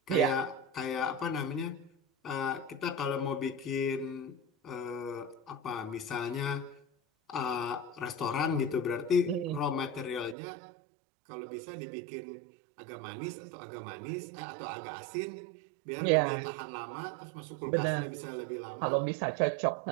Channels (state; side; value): drops out; left; at 10.4 s